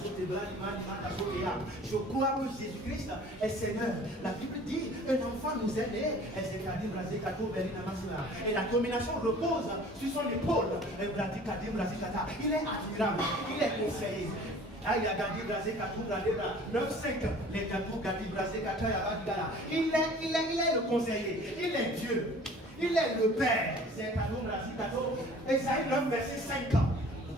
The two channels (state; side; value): normal; both; correlation 0.48